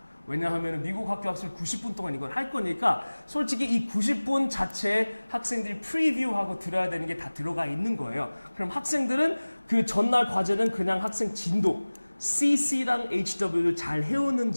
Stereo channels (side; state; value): both; inverted; correlation -1.00